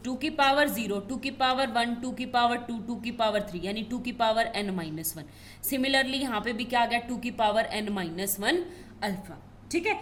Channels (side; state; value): both; identical; correlation 1.00